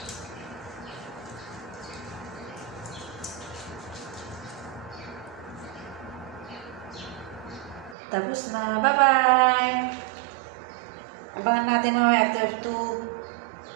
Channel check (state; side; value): drops out; left; at 8.0 s